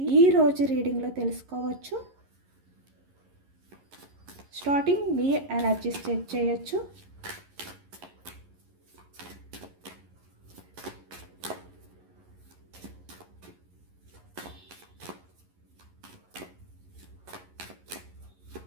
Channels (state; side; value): late; left; 11 ms